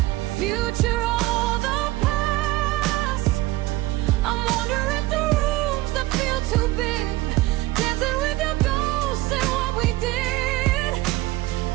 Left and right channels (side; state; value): left; quieter; 18.2 dB